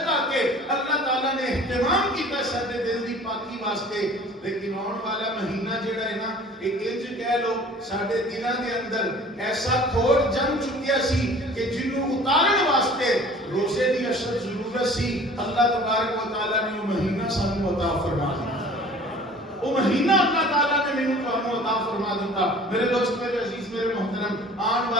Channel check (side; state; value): both; normal; correlation 0.47